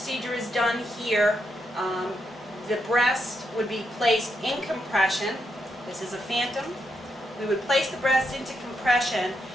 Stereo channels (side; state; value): both; normal; correlation 0.81